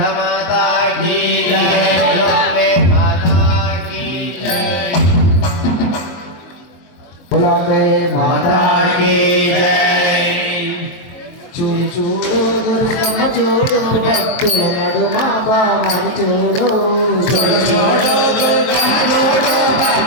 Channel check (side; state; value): right; late; 23 ms